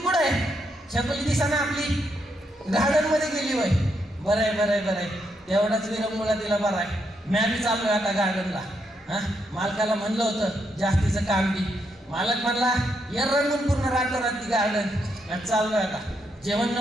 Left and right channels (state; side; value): normal; both; correlation 0.79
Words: आहे? छकुली दिसा ना आपली गार्डन मध्ये गेली वय. बरं आहे, तेवढाच विरंगुळा तिला बरं आहे. मी बी चाललोय आता गार्डनला. मालकाला म्हणलं होतं जास्तीचं काम बी, मालक म्हणला या रंगून पूर्ण रातोरात ती गार्डन. चाललोय आता, जेवण